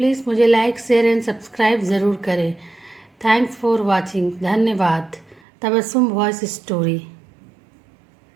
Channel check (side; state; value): left; drops out; at 5.4 s